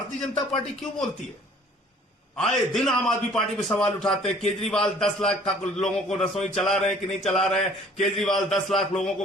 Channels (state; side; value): normal; both; correlation 0.54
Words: जनता पार्टी क्यों बोलती है? आए दिन आम आदमी पार्टी पे सवाल उठाते हैं। केजरीवाल 10 लाख लोगों को रसोई चला रहे हैं कि नहीं चला रहे हैं? केजरीवाल 10 लाख लोगों